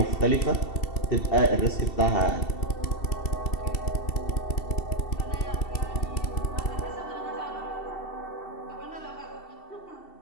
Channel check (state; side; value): late; right; 2.7 ms